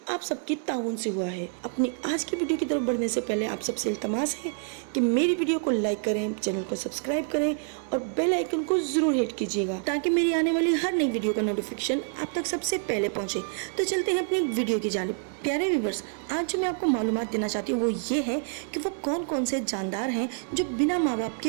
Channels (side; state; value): left; silent; 60 dB below the other